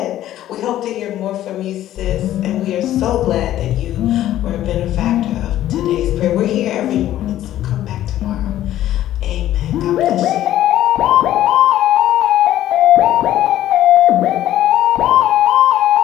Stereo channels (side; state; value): right; quieter; 13.0 dB